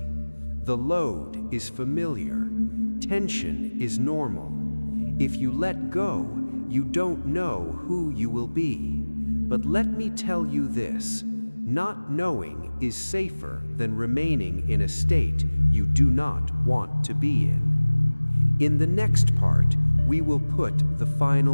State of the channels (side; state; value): both; inverted; correlation -1.00